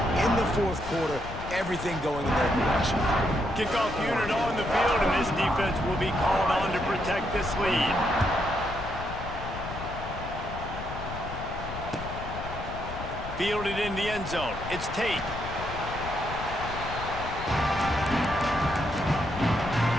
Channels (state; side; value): noise; left; rumble, 9 dB below the sound